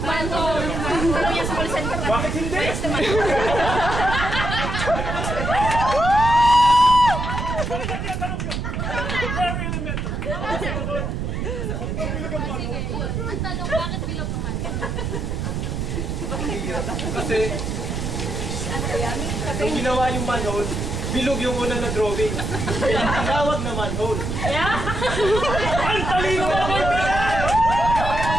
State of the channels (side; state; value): right; noise; rumble, 2 dB below the sound